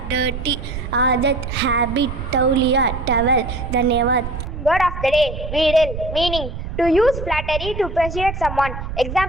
डर्टी, आदत, हैबिट, तौलिया, टवल. धन्यवाद. Word of the day, wheedle. Meaning, to use flattery to persuade someone.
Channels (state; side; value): noise; right; rumble, 7 dB below the sound